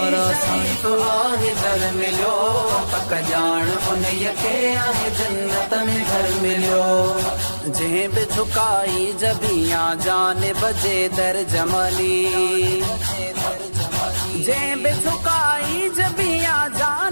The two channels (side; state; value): both; inverted; correlation -1.00